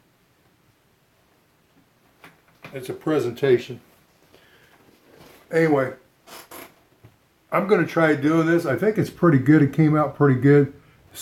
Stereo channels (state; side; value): identical; both; correlation 1.00